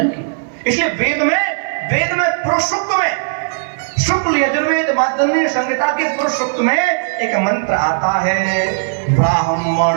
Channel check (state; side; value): silent; left; digital silence